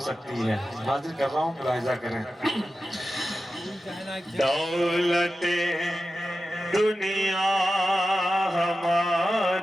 सकती है। हाजिर कर रहा हूँ, मुलाहिजा करें। दौलते दुनिया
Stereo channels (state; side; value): normal; both; correlation 0.93